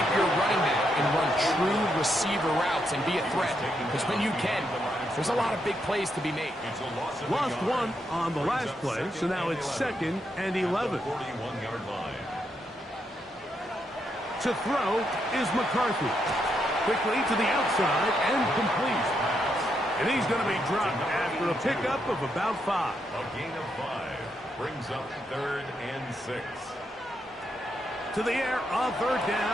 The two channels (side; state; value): both; normal; correlation 0.80